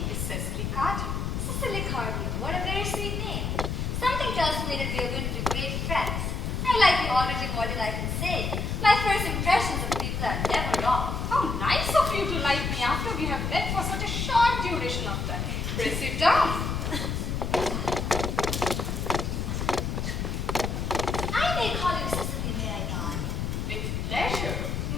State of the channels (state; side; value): noise; left; rumble, 2 dB below the sound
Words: is Cecily Cardew. Cecily Cardew, what a very sweet name. Something tells me that we are going to be great friends. I like you already more than I can say. My first impressions of people are never wrong. How nice of you to like me after we have met for such a short duration of time. Pray sit down. I may call you Cecily, may I not? With pleasure,